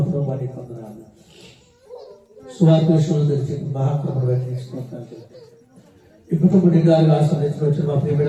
ప్రభువానికి వందనాలు. సువార్త విషయంలో తెలిసి మహాకృపను వ్యక్తించుకుంటాను. ఈ కుటుంబ నిండాలుగా ఆస్వాదించిన వచ్చిన మా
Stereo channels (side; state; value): both; identical; correlation 1.00